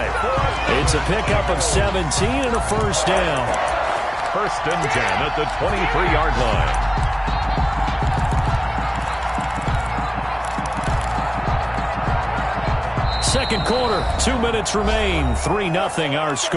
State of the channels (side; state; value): both; identical; correlation 1.00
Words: It's a pickup of 17 and a first down. 1st and 10 at the 23-yard line. Second quarter, 2 minutes remain. 3-0 our